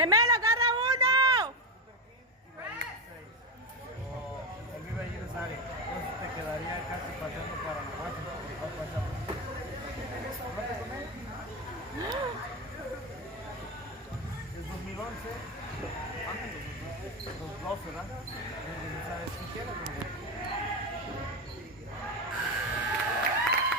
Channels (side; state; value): both; normal; correlation 0.13